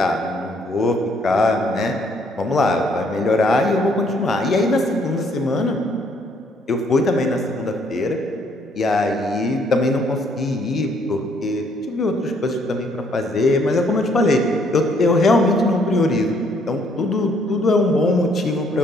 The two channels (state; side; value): normal; both; correlation 0.67